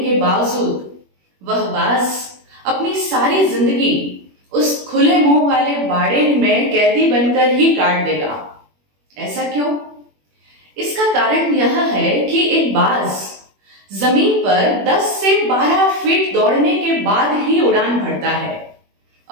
बावजूद वह बाज अपनी सारी जिंदगी उस खुले मुंह वाले बाड़े में कैदी बनकर ही काट देगा। ऐसा क्यों? इसका कारण यह है कि एक बाज जमीन पर 10 से 12 फीट दौड़ने के बाद ही उड़ान भरता है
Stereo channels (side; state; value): left; late; 21 ms